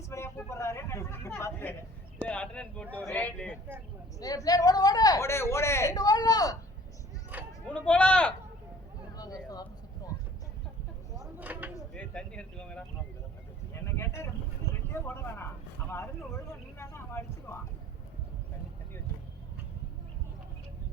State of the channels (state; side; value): normal; both; correlation 0.50